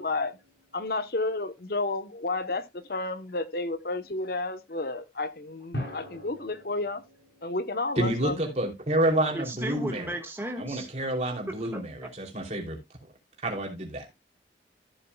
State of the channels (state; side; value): normal; both; correlation 0.10